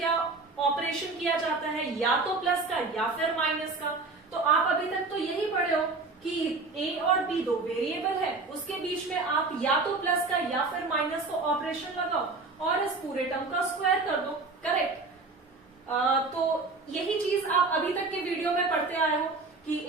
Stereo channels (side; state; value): left; quieter; 3.8 dB